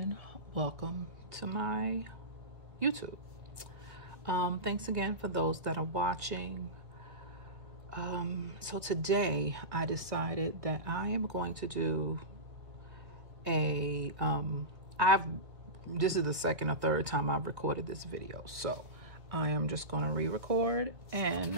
welcome to my YouTube. Thanks again for those that are watching. So today I decided that I am going to do a, this is the second or third time I've recorded this video. So I am just going to re-record,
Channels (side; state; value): left; late; 1.8 ms